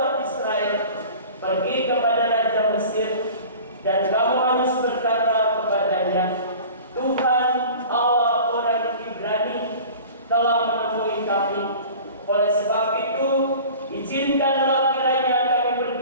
Israel pergi kepada Raja Mesir, dan kamu harus berkata kepadanya, Tuhan Allah orang Ibrani telah menemui kami. Oleh sebab itu, izinkanlah kiranya kami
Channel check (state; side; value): inverted; both; correlation -0.41